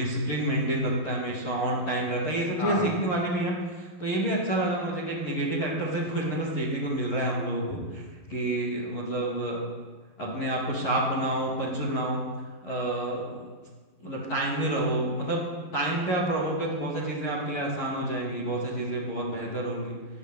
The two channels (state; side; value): late; right; 11 ms